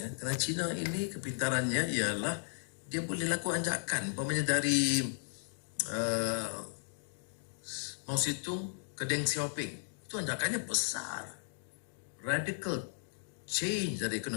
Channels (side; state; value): right; silent; digital silence